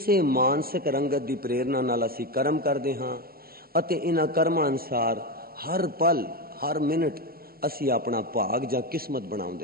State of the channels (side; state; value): left; late; 0.44 ms